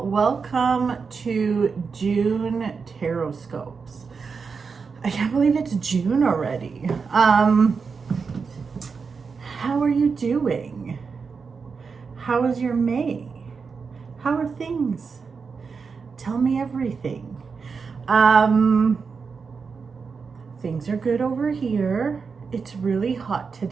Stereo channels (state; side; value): quieter; left; 5.3 dB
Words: Welcome to June Tarotscopes. I can't believe it's June already. How are you doing? How is your May? How are things? Tell me everything. Things are good over here. It's really hot